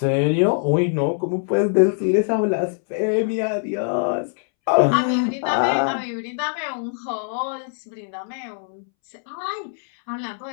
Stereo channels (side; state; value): right; silent; 64 dB below the other